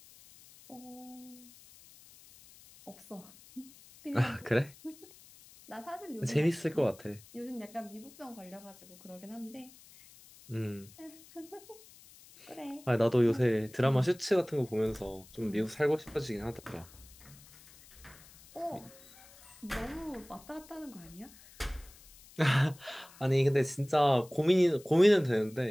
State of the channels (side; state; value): left; noise; hiss, 22 dB below the sound